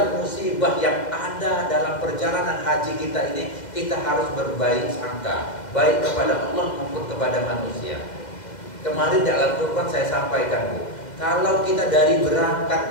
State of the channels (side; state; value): right; late; 2.0 ms